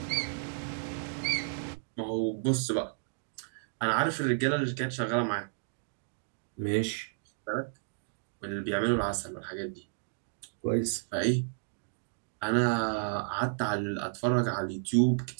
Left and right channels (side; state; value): left; silent; digital silence